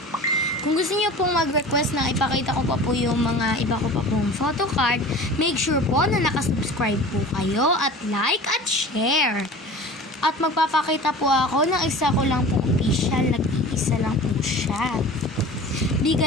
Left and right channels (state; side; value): normal; both; correlation 0.39